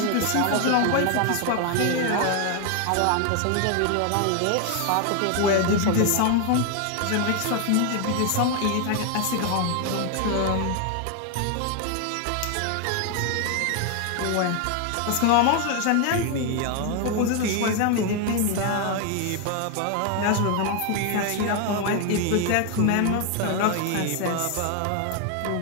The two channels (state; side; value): different; both; correlation 0.01